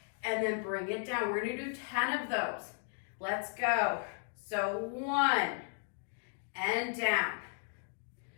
and then bring it down. We're gonna do 10 of those. Let's go. So 1, and down.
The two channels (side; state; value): right; silent; 54 dB below the other